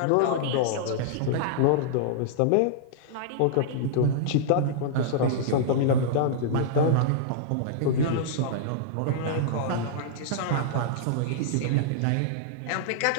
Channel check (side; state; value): both; different; correlation -0.02